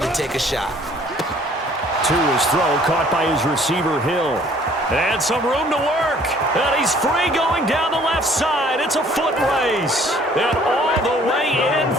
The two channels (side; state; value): both; normal; correlation 0.57